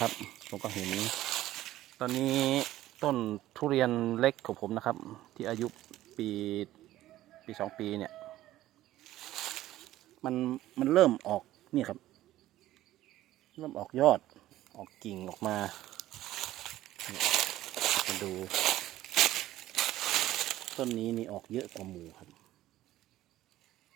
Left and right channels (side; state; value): left; quieter; 14.7 dB